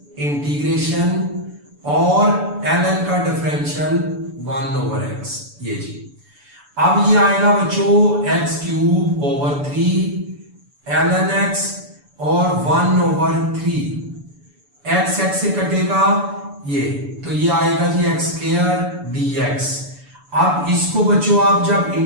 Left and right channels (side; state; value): left; late; 7.0 ms